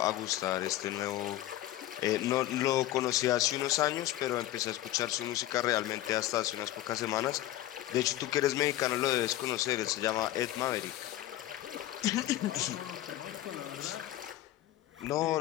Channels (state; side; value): quieter; right; 14.6 dB